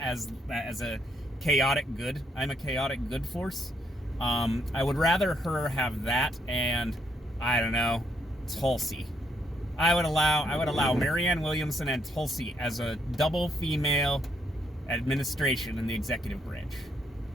a chaotic good. I'm a chaotic good force. I would rather her have that and, I don't know, Tulsi. I would allow Marianne Williamson and Tulsi as a double female administration in the executive branch.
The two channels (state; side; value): normal; both; correlation 0.73